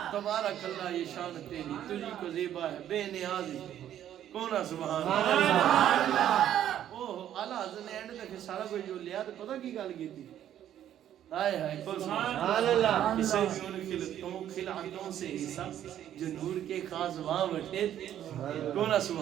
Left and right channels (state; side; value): quieter; left; 11.0 dB